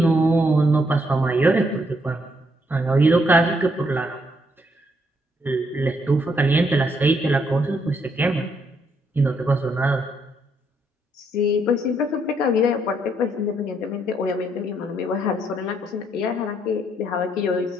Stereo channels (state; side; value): normal; both; correlation 0.73